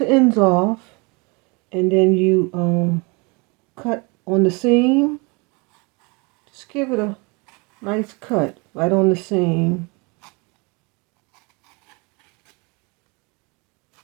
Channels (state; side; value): quieter; left; 29.4 dB